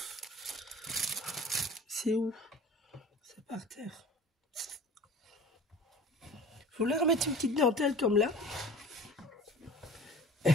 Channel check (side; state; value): both; normal; correlation 0.41